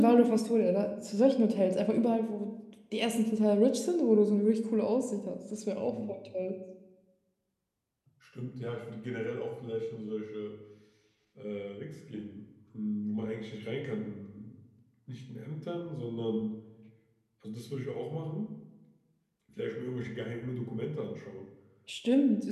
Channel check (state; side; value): identical; both; correlation 1.00